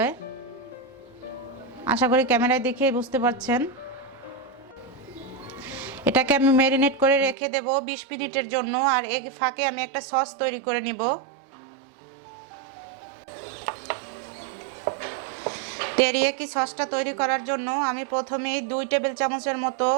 আশা করি ক্যামেরায় দেখে বুঝতে পারছেন। এটাকে আমি ম্যারিনেট করে রেখে দেব 20 মিনিটের জন্য, আর এর ফাঁকে আমি একটা সস তৈরি করে নিব। তেরিয়াকি সসটা তৈরি করার জন্য আমি প্রথমেই 2 টেবিল চামচের মতো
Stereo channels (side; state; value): left; drops out; at 7.4 s